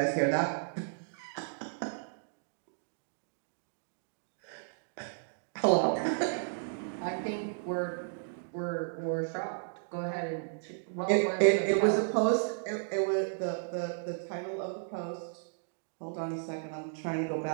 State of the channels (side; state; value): left; silent; digital silence